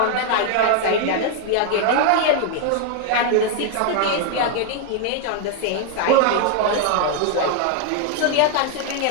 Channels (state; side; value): different; both; correlation 0.00